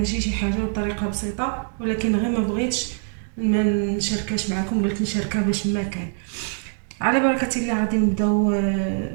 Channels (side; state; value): left; silent; 63 dB below the other